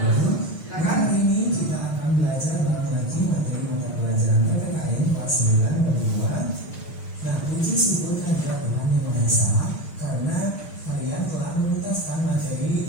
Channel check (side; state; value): right; late; 6.3 ms